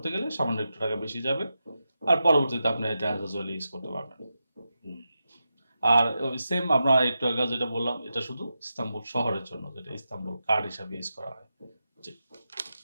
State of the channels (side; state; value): both; inverted; correlation -0.89